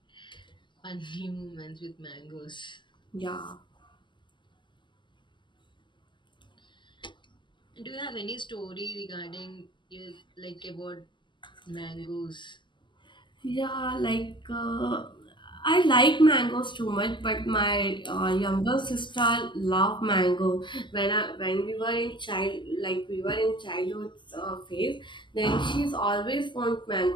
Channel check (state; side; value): late; right; 0.23 ms